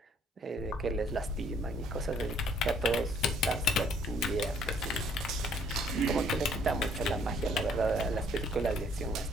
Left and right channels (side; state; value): both; normal; correlation 0.63